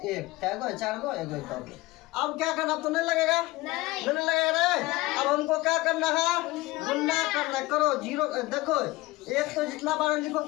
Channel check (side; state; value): right; quieter; 19.9 dB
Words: क्या गो 4 गो 1 अब क्या करना? अब तो नहीं लगेगा, नहीं लगेगा रे। अब हमको क्या करना है? गुना करना। करो जीरो। देखो एक तो जितना बार लिखो